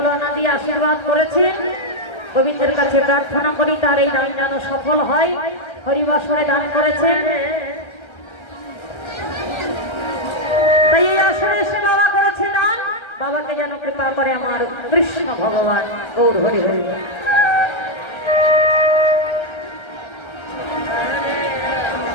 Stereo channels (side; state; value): right; late; 1.3 ms